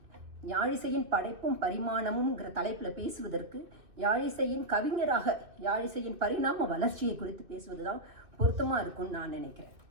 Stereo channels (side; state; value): left; late; 2.7 ms